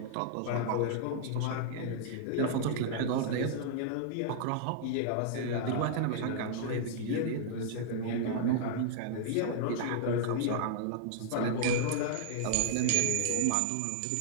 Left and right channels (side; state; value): both; different; correlation -0.01